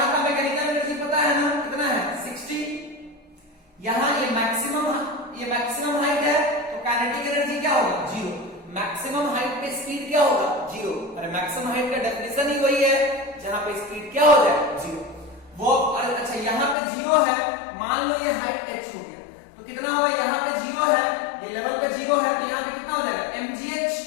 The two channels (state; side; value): drops out; right; at 16.8 s